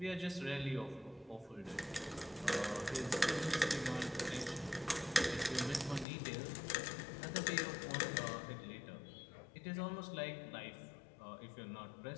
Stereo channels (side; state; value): right; drops out; at 6.1 s